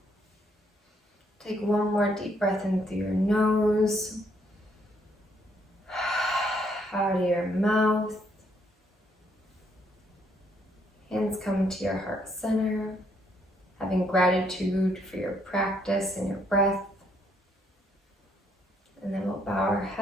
Take one more deep breath in through your nose. Out of your mouth. Hands come to your heart center. Having gratitude for your practice and your breath. And then we'll bow our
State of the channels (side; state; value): both; normal; correlation 0.71